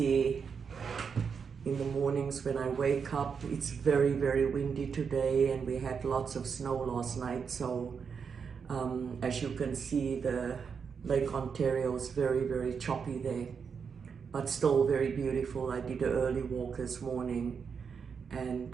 in the mornings when I wake up. It's very, very windy today, and we had lots of snow last night, so as you can see, the Lake Ontario is very, very choppy there, but still very beautiful. I did an early walk this morning, and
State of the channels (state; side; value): quieter; left; 6.2 dB